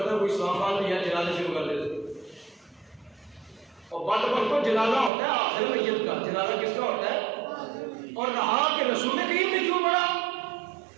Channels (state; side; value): drops out; left; at 5.1 s